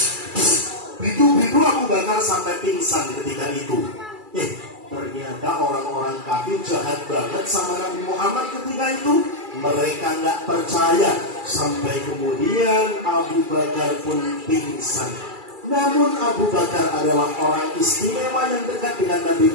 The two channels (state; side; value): late; left; 2.3 ms